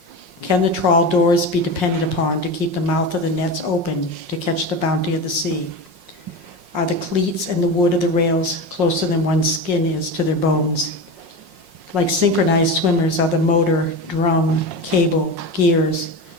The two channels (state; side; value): late; left; 5.6 ms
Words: Can the trawl doors be depended upon to keep the mouth of the nets open to catch the bounty of the sea? Are the cleats and the wood of the rails closer than one's skin is to their bones? Like synchronized swimmers are the motor, drum, cable, gears,